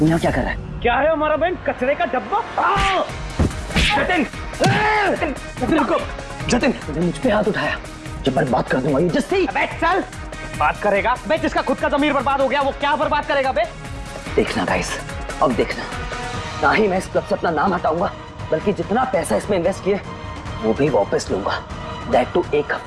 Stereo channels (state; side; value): identical; both; correlation 1.00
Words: यहाँ क्या कर रहा है? क्या है हमारा बैंड? कचरे का डब्बा? जतिन, रुको। जतिन, तूने मुझ पे हाथ उठाया, जब मैं बात कर दूंगा ये जस्सी। अबे चल, बात करेगा? बे जिसका खुद का ज़मीर बर्बाद हो गया वो क्या बर्बाद करेगा बे? देखना गाइस, अब देखना, ना ही मैं इस क्लब से अपना नाम हटाऊंगा, बल्कि जितना पैसा इसमें इन्वेस्ट किया वो भी वापस लूंगा। दैट टू 1